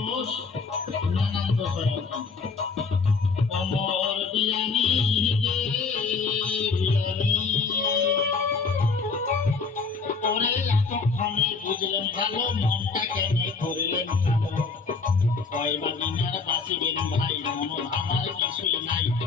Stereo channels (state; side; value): quieter; right; 4.6 dB